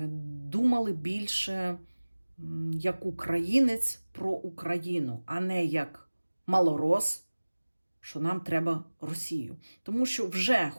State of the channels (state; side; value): inverted; both; correlation -1.00